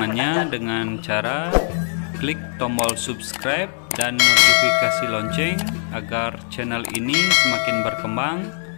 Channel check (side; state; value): right; silent; digital silence